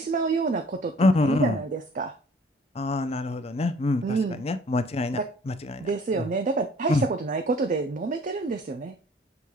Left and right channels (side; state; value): both; normal; correlation 0.54